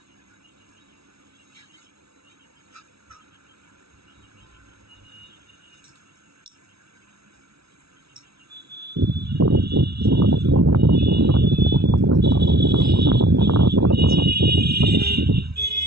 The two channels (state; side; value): late; left; 0.76 ms